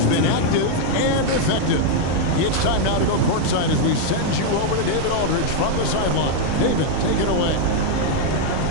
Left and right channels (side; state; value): both; different; correlation 0.00